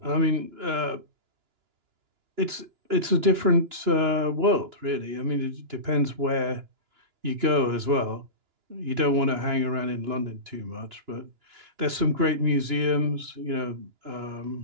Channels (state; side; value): late; left; 2.9 ms